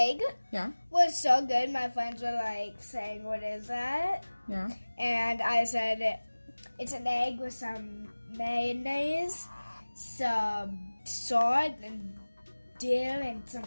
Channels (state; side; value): inverted; both; correlation -1.00